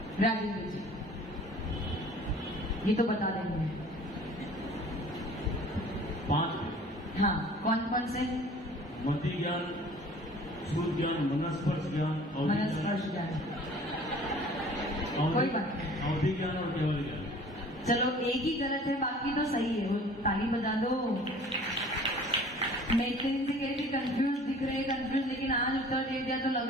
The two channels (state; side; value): normal; both; correlation 0.48